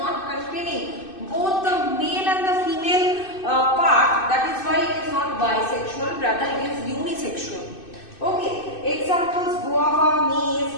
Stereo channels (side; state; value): right; late; 2.6 ms